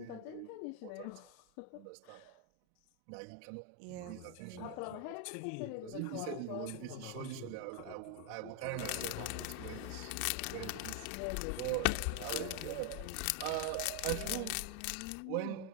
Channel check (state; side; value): different; both; correlation 0.00